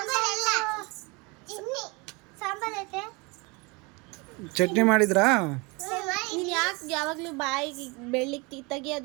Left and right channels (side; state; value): left; quieter; 27.8 dB